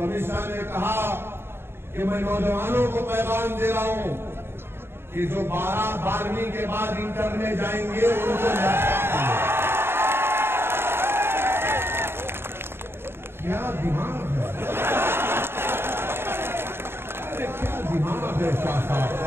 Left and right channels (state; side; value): late; left; 0.11 ms